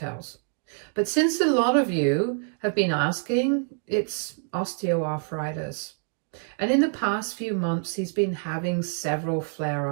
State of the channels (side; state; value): left; silent; 61 dB below the other